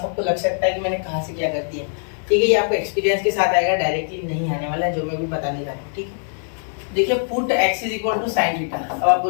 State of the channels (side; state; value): right; silent; 59 dB below the other